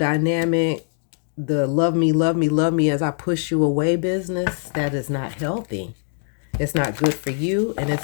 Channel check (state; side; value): silent; right; 64 dB below the other